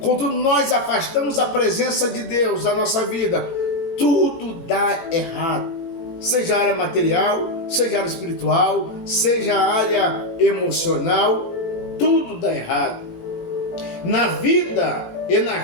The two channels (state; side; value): late; right; 18 ms